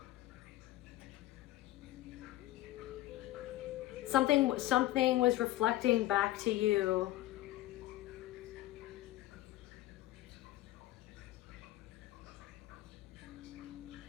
something was reflecting back to you.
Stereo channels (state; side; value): quieter; right; 15.8 dB